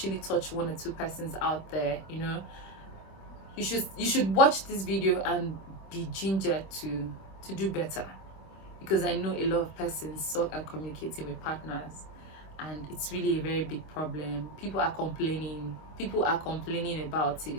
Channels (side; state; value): right; late; 26 ms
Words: touch 1 or 2 persons out there. You know, you should watch this video and be gingered to do better, because I know a lot of persons suck at communicating with partners, and it's really a very big problem. People are complaining about